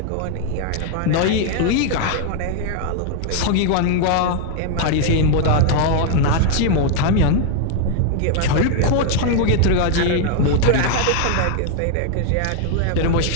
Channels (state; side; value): different; both; correlation 0.00